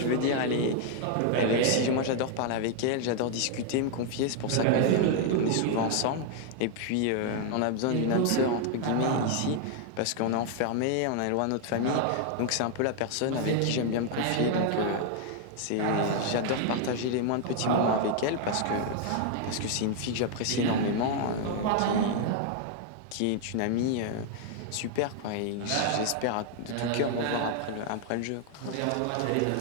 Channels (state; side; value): different; both; correlation 0.00